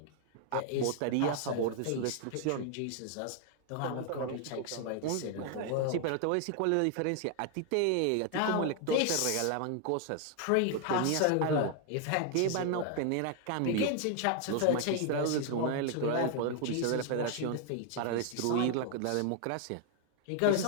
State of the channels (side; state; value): both; different; correlation 0.00